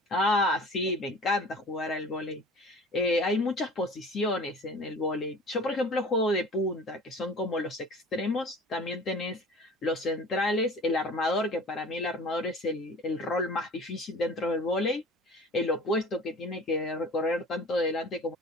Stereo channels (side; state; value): both; normal; correlation 0.42